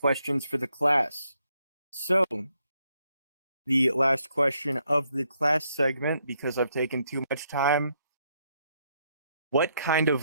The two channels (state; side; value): inverted; both; correlation -0.75